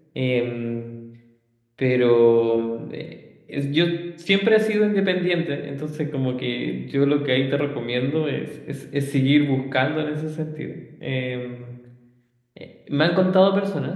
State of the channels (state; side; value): identical; both; correlation 1.00